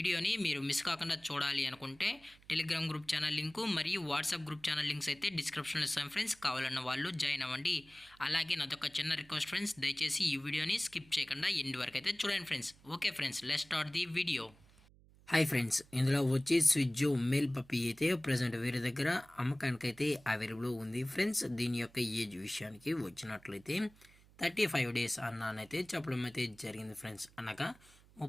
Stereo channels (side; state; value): right; noise; hum, 26 dB below the sound